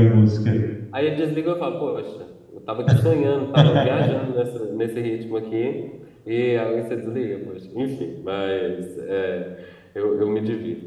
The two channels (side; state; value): both; identical; correlation 1.00